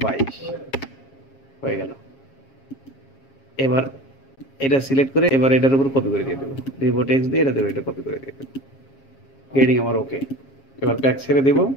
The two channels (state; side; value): late; right; 7.4 ms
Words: হয়ে গেল। এবার এটা সিলেক্ট করে এবার এটার উপর কপি করে দিয়ে দেবো, রিপোর্ট এক্স দিয়ে এটা দেবো, এটা কপি করে দিয়ে দেবো। গ্রেডিং আমার ওকে। এবার প্যাক ছেড়ে দেবো,